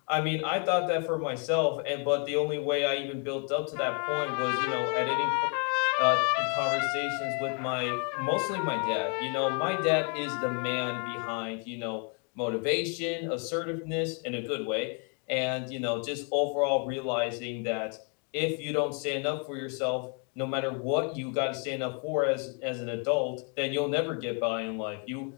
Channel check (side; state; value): right; quieter; 39.1 dB